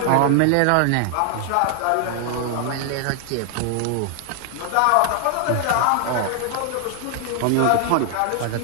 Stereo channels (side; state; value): both; different; correlation 0.00